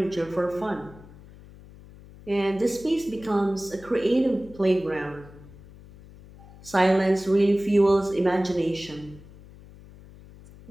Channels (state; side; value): noise; left; hum, 20 dB below the sound